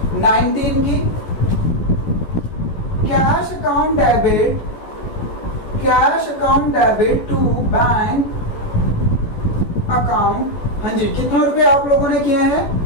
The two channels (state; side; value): late; right; 14 ms